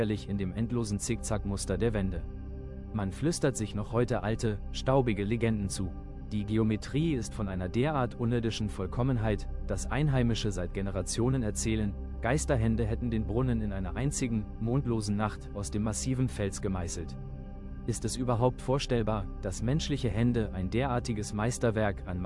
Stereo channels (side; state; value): both; identical; correlation 1.00